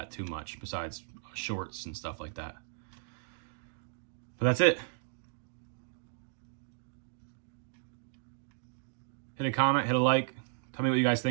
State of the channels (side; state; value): left; silent; digital silence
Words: too much, besides shorts and stuff like that. But that's it. Hit a comment, hit a like. Tell me what you guys